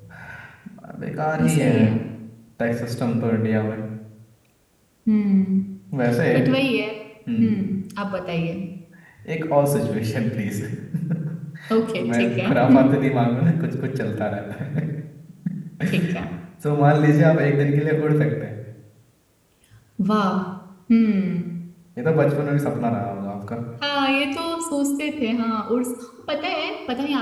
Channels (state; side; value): identical; both; correlation 1.00